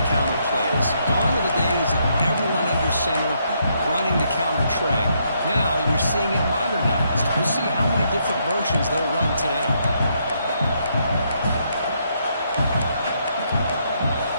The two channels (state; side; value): inverted; both; correlation -0.75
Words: counter plays. Gone are the days of everyone under center running the counter tray. Now you're seeing it modernized. We'll see how many different versions they'll run today.